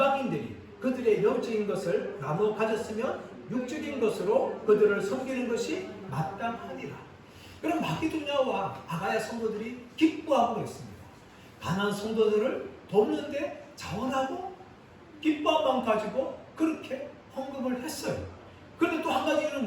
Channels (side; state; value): both; identical; correlation 1.00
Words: 그들의 영적인 것을 나눠 가졌으면 육적인 것으로 그들을 섬기는 것이 마땅하니라. 그럼 마게도냐와 아가야 성도들이 기뻐하고 있습니다. 가난한 성도들을 돕는데 자원하고 기뻐한 마음 가지고 그렇게 헌금을 했어요. 그런데 또 한